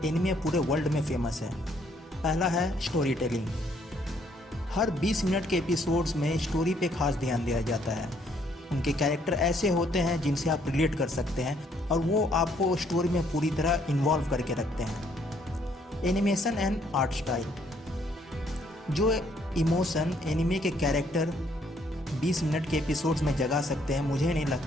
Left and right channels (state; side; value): normal; both; correlation 0.67